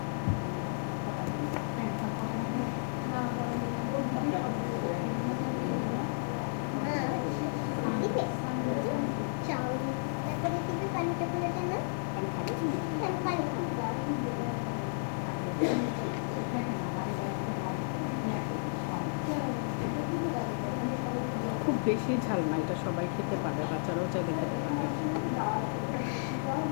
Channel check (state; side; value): silent; right; 56 dB below the other